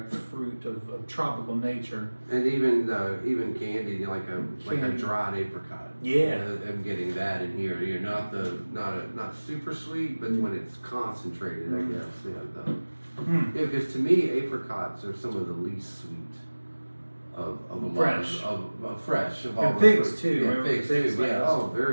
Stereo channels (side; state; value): both; inverted; correlation -1.00